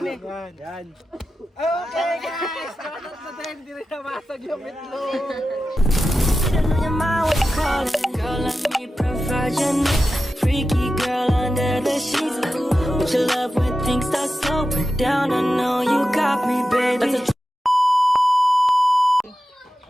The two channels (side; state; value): both; normal; correlation 0.92